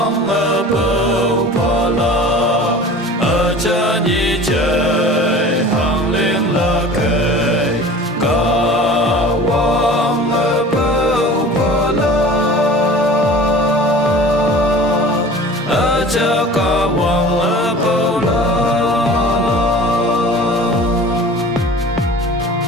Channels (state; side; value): normal; both; correlation 0.41